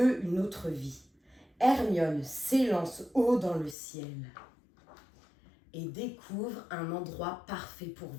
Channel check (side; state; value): right; drops out; at 3.8 s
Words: une autre vie. Hermione s'élance haut dans le ciel et découvre un endroit parfait pour